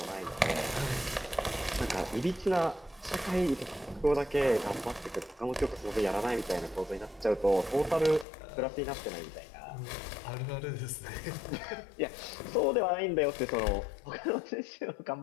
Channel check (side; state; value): right; drops out; at 8.2 s